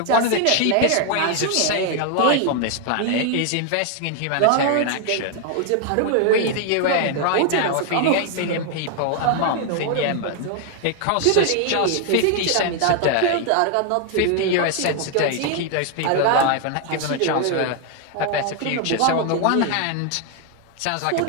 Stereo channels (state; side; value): different; both; correlation 0.00